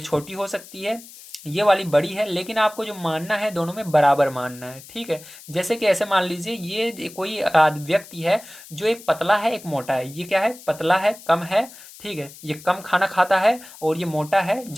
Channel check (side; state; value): left; noise; hiss, 18 dB below the sound